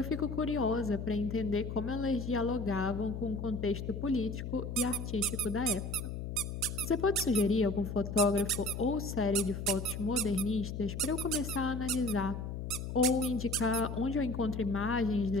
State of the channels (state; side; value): noise; left; hum, 6 dB below the sound